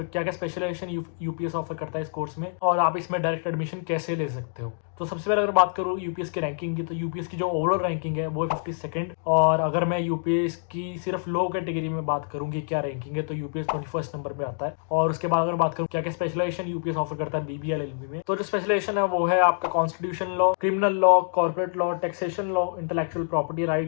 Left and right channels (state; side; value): silent; right; digital silence